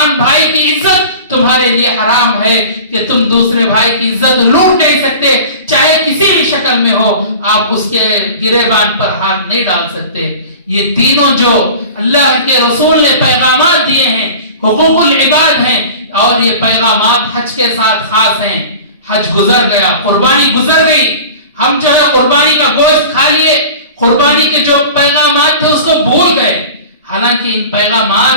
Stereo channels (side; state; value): both; inverted; correlation -0.38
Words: بھائی کی عزت تمہارے لیے حرام ہے، کہ تم دوسرے بھائی کی عزت لوٹ نہیں سکتے، چاہے کسی بھی شکل میں ہو. آپ اس کے گریبان پر ہاتھ نہیں ڈال سکتے. یہ تینوں جو اللہ کے رسول نے پیغامات دیے ہیں حقوق العباد ہیں، اور یہ پیغامات حج کے ساتھ خاص ہیں. حج گزر گیا، قربانی گزر گئی، ہم جو ہے قربانی کا گوشت کھا لیے، قربانی کے جو پیغامات تھے اس کو بھول گئے. حالانکہ ان